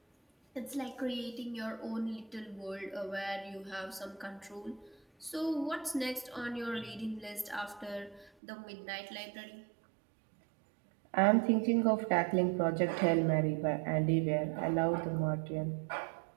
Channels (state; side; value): drops out; left; at 8.3 s